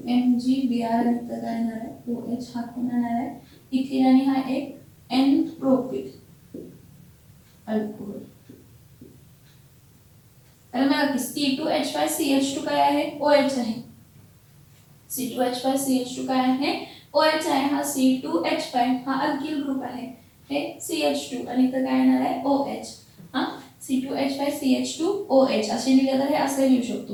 आणि इथं काय येणार आहे OH, हा कोण येणार आहे इथिन आणि हा एक N प्रोपिल अल्कोहोल. तर बघा की C2H5CH2 काय आहे OH आहे, C2H5CH2 काय आहे OH आहे, हा C2H5 हा अल्किल ग्रुप आहे, हे CH2 आणि इथं काय येणार आहे OH, हा C2H5CH2OH असे लिहिलं तर हे असे लिहू शकतो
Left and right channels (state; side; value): identical; both; correlation 1.00